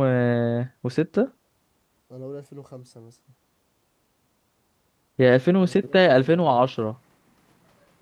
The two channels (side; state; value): both; identical; correlation 1.00